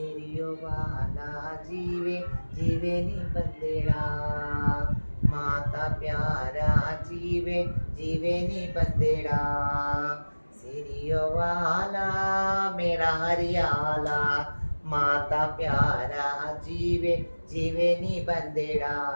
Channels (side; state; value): both; inverted; correlation -1.00